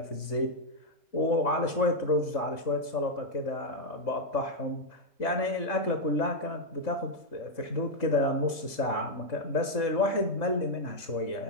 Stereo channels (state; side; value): late; right; 4.1 ms